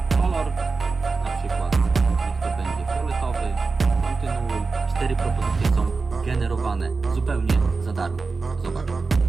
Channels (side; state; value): left; quieter; 4.2 dB